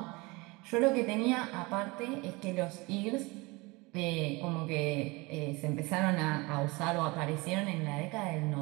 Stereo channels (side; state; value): left; quieter; 24.7 dB